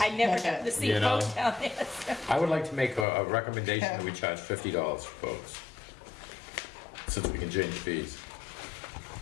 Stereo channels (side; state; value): right; drops out; at 3.1 s